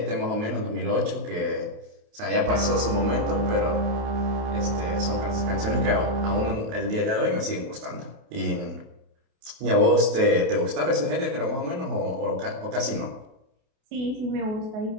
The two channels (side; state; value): left; late; 28 ms